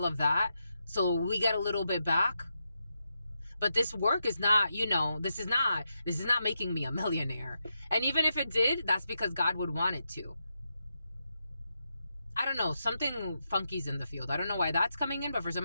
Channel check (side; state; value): both; inverted; correlation -0.85